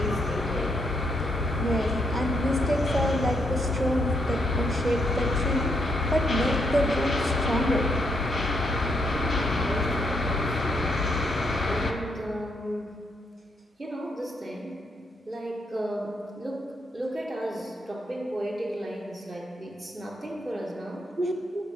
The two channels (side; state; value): both; normal; correlation 0.76